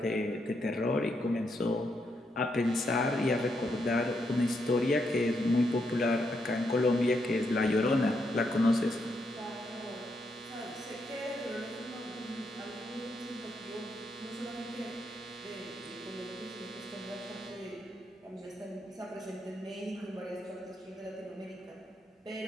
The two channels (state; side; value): normal; both; correlation 0.79